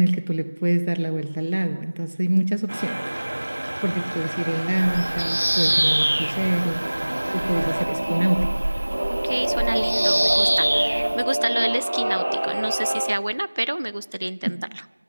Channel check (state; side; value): inverted; both; correlation -1.00